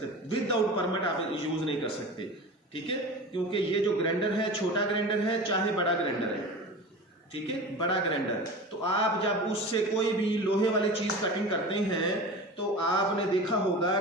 विदाउट परमिट आप यूज नहीं कर सकते, ठीक है। क्योंकि ये जो ग्राइंडर है, छोटा ग्राइंडर है चाहे बड़ा ग्राइंडर है, ठीक है, बड़ा ग्राइंडर, तो आप जब उससे कोई भी लोहे वाली चीज कटिंग करते हैं तो आपने देखा होगा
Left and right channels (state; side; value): normal; both; correlation 0.33